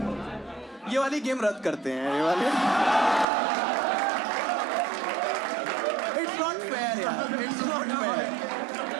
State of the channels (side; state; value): left; drops out; at 3.2 s